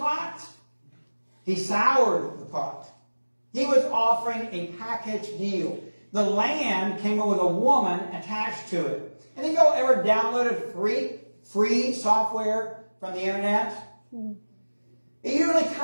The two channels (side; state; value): both; inverted; correlation -1.00